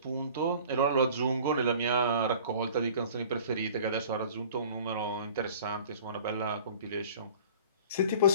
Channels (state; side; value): inverted; both; correlation -0.46